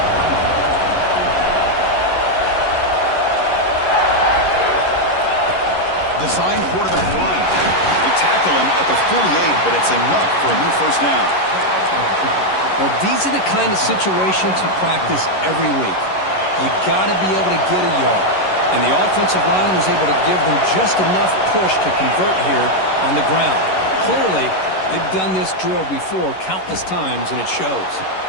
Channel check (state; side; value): late; right; 11 ms